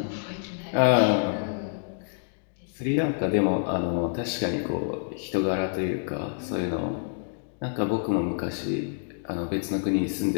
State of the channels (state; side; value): silent; right; digital silence